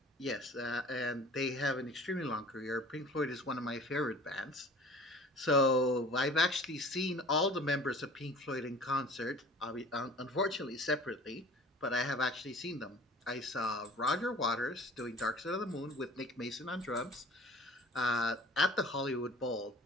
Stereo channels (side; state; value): both; normal; correlation 0.46